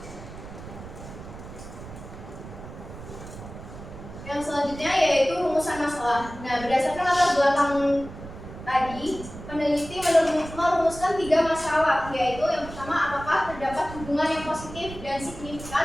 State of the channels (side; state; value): right; noise; rumble, 13 dB below the sound